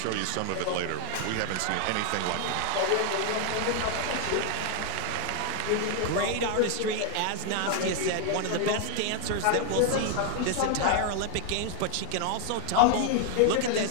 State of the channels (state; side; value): different; both; correlation 0.01